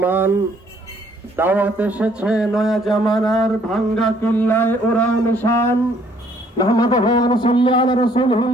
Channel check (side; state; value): both; normal; correlation 0.64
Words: দাওয়াত এসেছে নয়া জামানার ভাঙ্গা কিল্লায় ওরাও নিশান। নাহমাদুহু ওয়া নুসাল্লি আলা